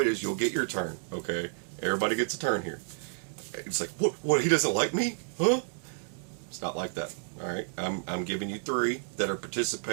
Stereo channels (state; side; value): silent; left; digital silence